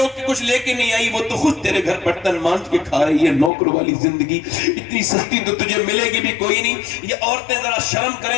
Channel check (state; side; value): drops out; right; at 3.5 s